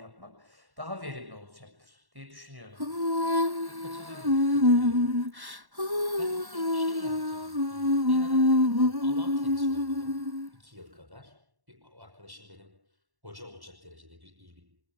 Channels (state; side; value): late; left; 1.1 ms